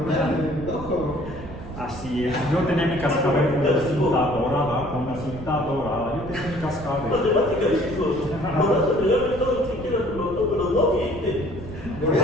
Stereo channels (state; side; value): noise; right; rumble, 12 dB below the sound